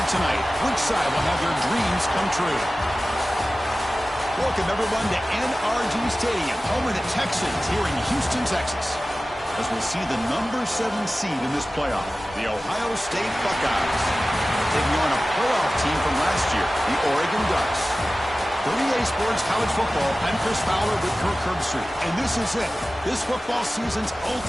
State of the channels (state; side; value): normal; both; correlation 0.96